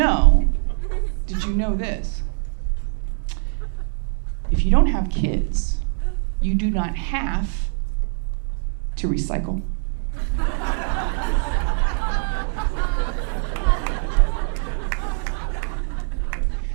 this? If you don't have kids, you do not have to recycle.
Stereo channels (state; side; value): silent; left; 61 dB below the other